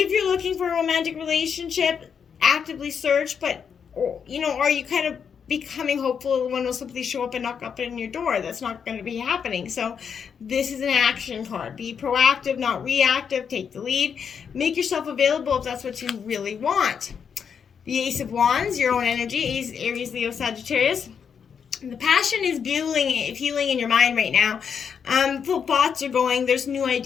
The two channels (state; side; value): quieter; right; 7.0 dB